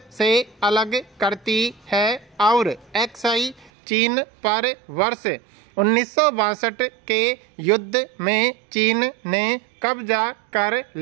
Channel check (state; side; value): drops out; left; at 3.7 s